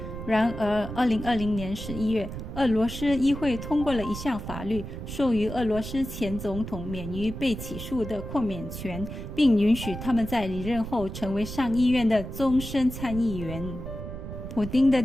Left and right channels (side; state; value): right; noise; rumble, 8 dB below the sound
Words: 然而2020年11月，俄罗斯议会通过了一项法律，授予俄罗斯前总统免于被起诉的豁免权，并允许他们在离任后成为上议院的终身参议员。普丁的